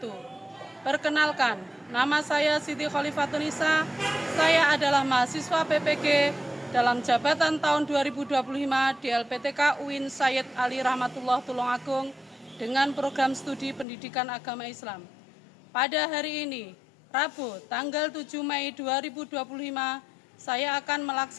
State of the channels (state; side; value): drops out; right; at 13.9 s